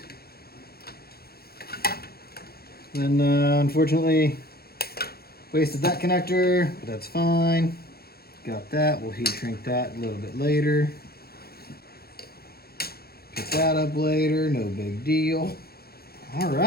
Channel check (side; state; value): right; late; 0.45 ms